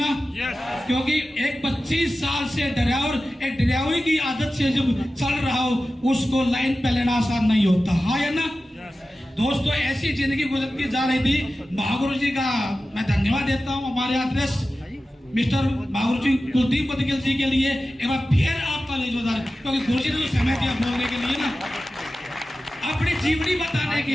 क्योंकि एक 25 साल से ड्राइवर, एक ड्राइवरी की आदत से जब चल रहा हो, उसको लाइन पे लेना आसान नहीं होता, हाँ या ना? दोस्तों, ऐसी जिंदगी गुजरती जा रही थी। महागुरु जी का मैं धन्यवाद देता हूँ, हमारे आदर्श मिस्टर महागुरु जी कुलदीप बदगिल जी के लिए एक बार फिर आपका जोरदार, क्योंकि गुरु जी ने तो समय दिया बोलने के लिए ना, अपनी जीवनी बताने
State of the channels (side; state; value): both; normal; correlation 0.94